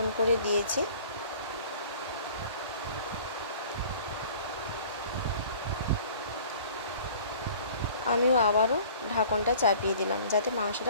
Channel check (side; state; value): both; inverted; correlation -0.49